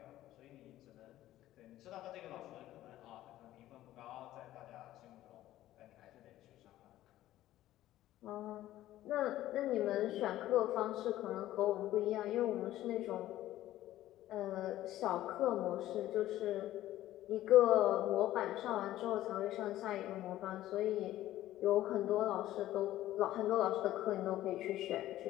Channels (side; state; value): right; quieter; 14.3 dB